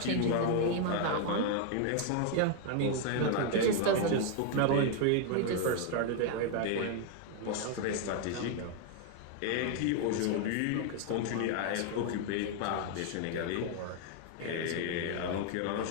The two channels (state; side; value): different; both; correlation 0.00